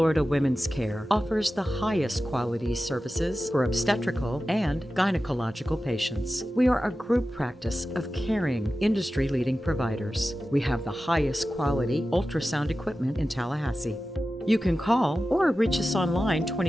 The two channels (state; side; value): normal; both; correlation 0.94